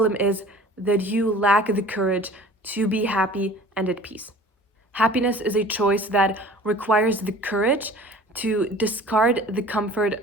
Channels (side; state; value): both; normal; correlation 0.45